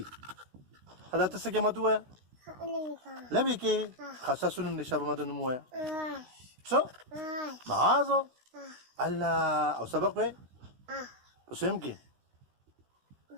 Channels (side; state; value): left; late; 16 ms